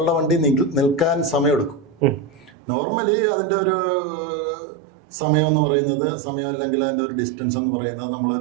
വണ്ടി നിൽക്കാൻ സമയമെടുക്കും. നോർമലി അതിൻ്റെ ഒരു സമയം എന്ന് പറയുന്നത്, സമയം അല്ലെങ്കിൽ അതിൻ്റെ ഒരു ഡിസ്റ്റൻസ് എന്ന് പറയുന്നത്,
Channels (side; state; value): left; drops out; at 2.5 s